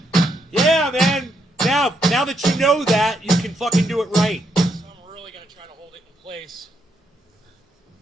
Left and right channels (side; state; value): both; normal; correlation 0.78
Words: Yeah, man. Now that you know that, you can fucking do it right. So I'm really gonna try to hold it in place.